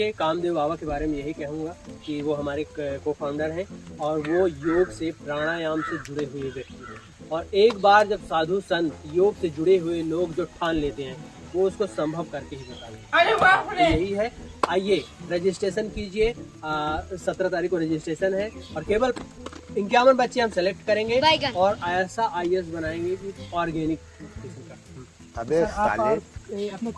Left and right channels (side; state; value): both; identical; correlation 1.00